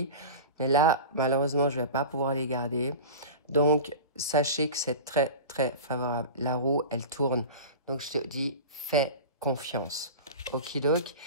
Mais là, malheureusement, je ne vais pas pouvoir les garder. Donc, sachez que c'est très, très favorable. La roue, elle tourne. Donc, je te dis, fais confiance. Okidoki.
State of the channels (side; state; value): both; inverted; correlation -0.32